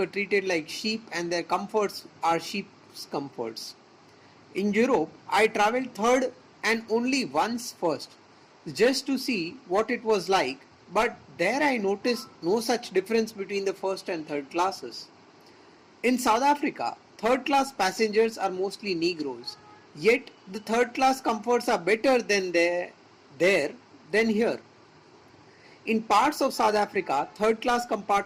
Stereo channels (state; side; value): identical; both; correlation 1.00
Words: treated like sheep and their comforts are sheep's comforts. In Europe, I travelled third and only once first, just to see what it was like, but there I noticed no such difference between the first and third classes. In South Africa, third class passengers are mostly Negroes, yet the third class comforts are better there than here. In parts of South Africa, third class